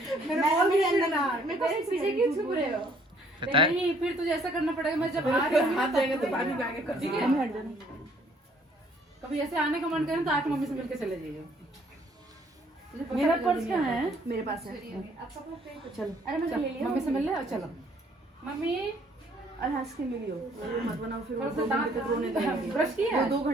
मैं पीछे क्यों छुप रहे हो? नहीं फिर तुझे ऐसा करना पड़ेगा, मैं जब आ रही हूँ हाथ देंगे तो पानी में आगे कर। ठीक है। कभी ऐसे आने का मन करे तो आके मम्मी से मिलके चले जाइए। मेरा पर्स कहाँ है? मेरे पास है। चलो अरे मैं ले लिया मम्मी से मिल ले और चलो। मम्मी और हंस के मिलियो, मत बनाओ फिर वो थोड़ा सा 2 घंटे तक रोने लगेगी। ब्रश किया है? 2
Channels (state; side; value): normal; both; correlation 0.62